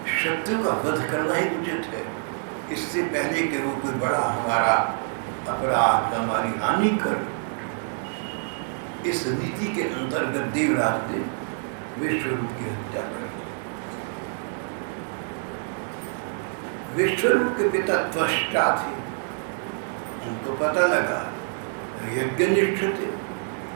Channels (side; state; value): left; silent; 61 dB below the other